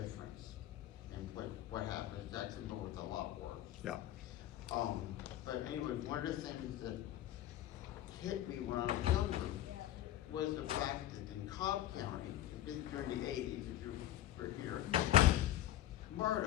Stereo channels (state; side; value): quieter; right; 13.0 dB